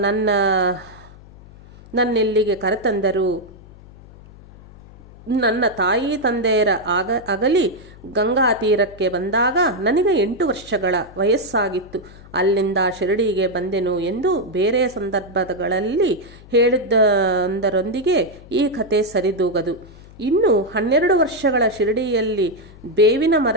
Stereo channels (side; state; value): left; noise; hum, 21 dB below the sound